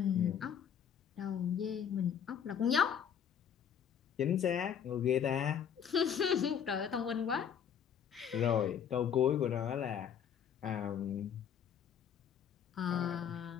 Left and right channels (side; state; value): right; quieter; 8.2 dB